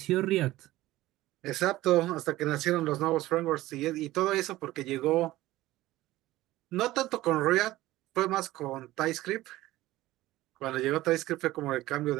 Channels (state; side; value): quieter; left; 16.7 dB